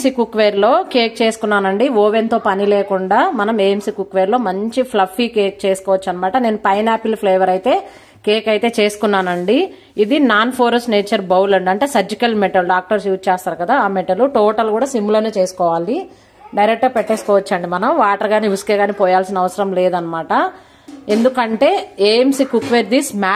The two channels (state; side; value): identical; both; correlation 1.00